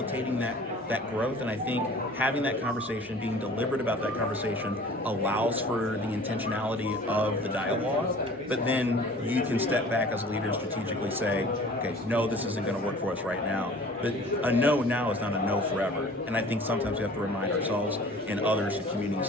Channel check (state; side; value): normal; both; correlation 0.46